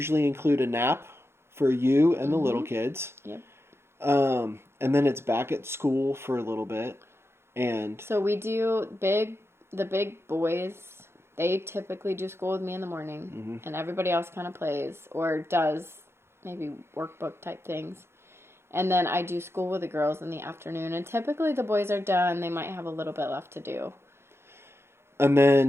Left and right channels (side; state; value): left; late; 0.12 ms